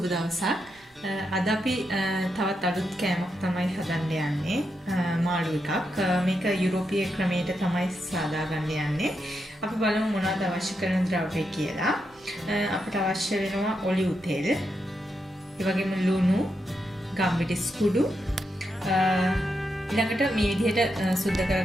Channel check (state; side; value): normal; both; correlation 0.84